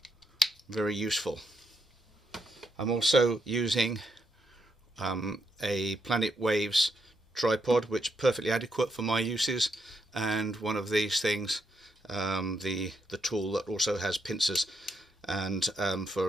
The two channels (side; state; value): both; normal; correlation 0.79